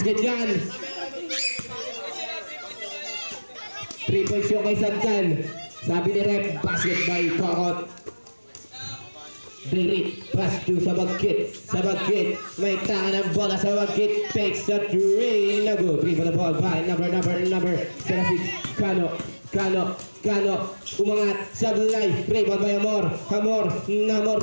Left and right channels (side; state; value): both; inverted; correlation -1.00